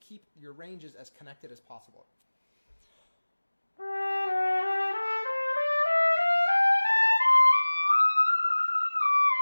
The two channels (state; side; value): inverted; both; correlation -1.00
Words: your ranges as connected as possible.